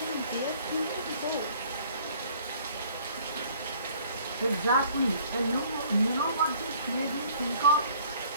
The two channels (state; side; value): inverted; both; correlation -0.56